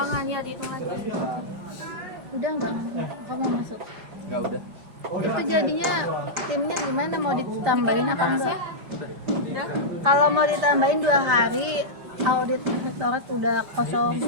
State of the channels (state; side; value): late; left; 5.3 ms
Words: ya, dihitung lagi. Udah enggak? Kamu masuk. enggak udah. Itu jadinya timnya gimana, mau ditambahin apa enggak? Udah. Kalau mau ditambahin 2 hari, audit rektorat udah kosong.